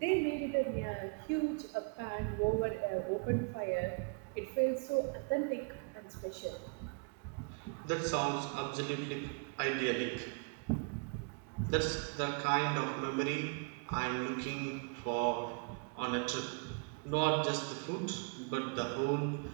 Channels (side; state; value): left; quieter; 36.2 dB